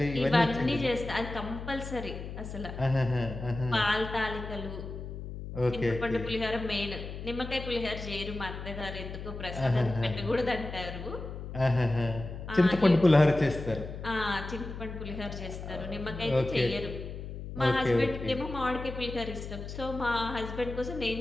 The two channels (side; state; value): left; noise; hum, 9 dB below the sound